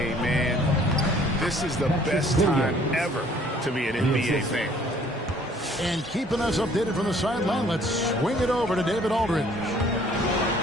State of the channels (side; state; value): both; normal; correlation 0.57